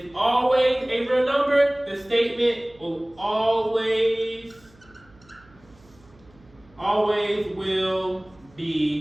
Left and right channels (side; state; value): right; noise; hum, 28 dB below the sound